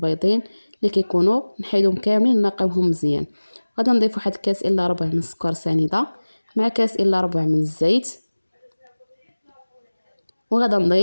اللي كيكونوا، نحيدهم كاملين نقيوهم مزيان. غادي نضيف واحد كاس الا ربع من السكر سنيده مع كاس الا ربع من الزيت، وغادا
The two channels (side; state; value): both; inverted; correlation -1.00